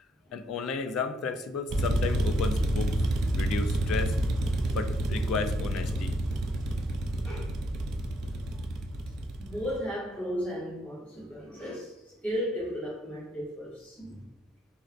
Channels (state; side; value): normal; both; correlation 0.74